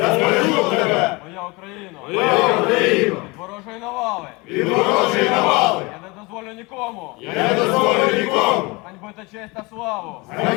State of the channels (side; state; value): right; quieter; 25.5 dB